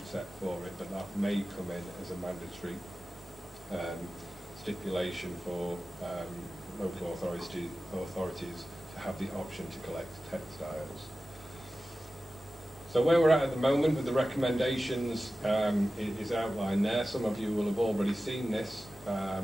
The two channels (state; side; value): normal; both; correlation 0.95